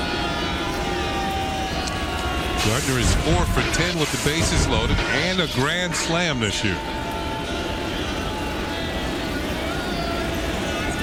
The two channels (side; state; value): both; identical; correlation 1.00